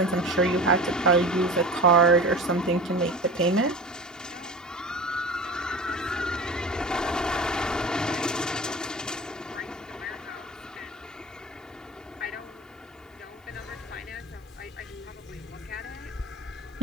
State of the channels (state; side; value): normal; both; correlation 0.34